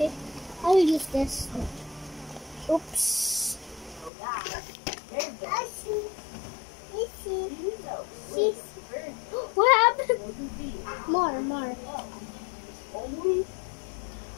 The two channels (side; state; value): right; drops out; at 4.1 s